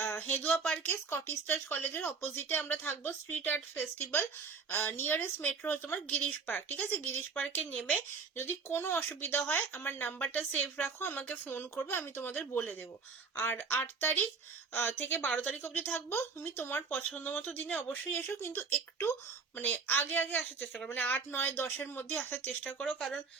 হেদুয়া পার্কে স্কটিশ চার্চ কলেজের অপোজিটে আমরা থাকবো, street art festival, nearest metro হচ্ছে তোমার গিরিশ পার্ক, ঠিক আছে, গিরিশ পার্কে নেমে যদি কোনো অসুবিধা হয় আমার নাম্বারটা সেভ রাখো, আমাকে ফোন করবে, আমি তোমাদের বলে দেবো। আর 8 তারিখ থেকে 12 তারিখ অবধি থাকবো, তুমি তোমার পছন্দ মতো দিনে অবশ্যই এসো, কিন্তু একটু মানে আগে আগে আসার চেষ্টা করো, মানে 8, 9, 10-এর মধ্যে আসার চেষ্টা করো, কারণ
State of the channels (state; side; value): quieter; left; 5.2 dB